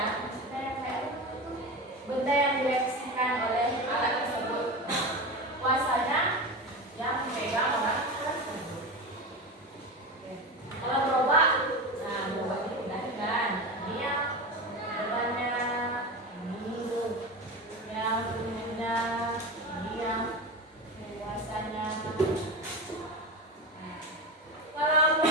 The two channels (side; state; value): both; normal; correlation 0.24